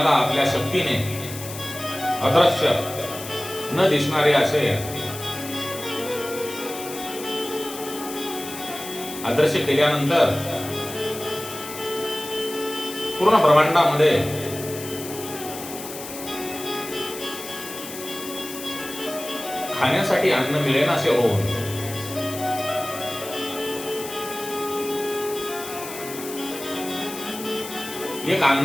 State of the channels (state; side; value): noise; left; hiss, 11 dB below the sound